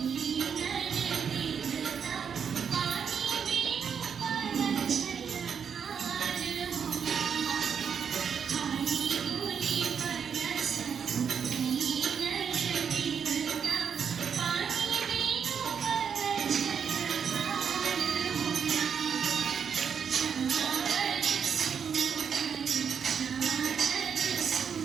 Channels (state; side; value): quieter; left; 7.1 dB